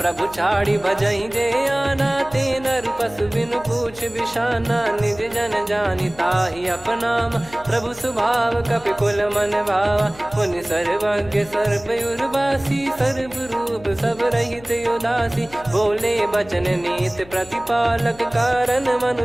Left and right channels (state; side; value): noise; left; hum, 21 dB below the sound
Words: छाड़ी भजहि जे आना ते नर पशु बिनु पूछ बिशाना। निज जन जानि ताहि अपनाम प्रभु स्वभाव कपि कुल मन भावा। मुनि सर्वज्ञ सर्वयुर्वासी सर्व रूप सब रहित उदासी। बोले बचन नीत प्रतिपालक कारण